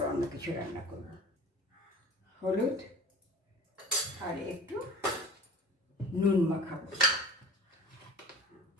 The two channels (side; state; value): both; normal; correlation 0.41